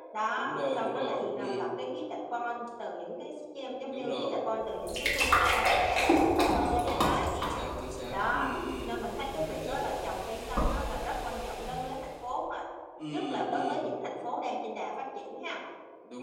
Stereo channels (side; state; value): both; identical; correlation 1.00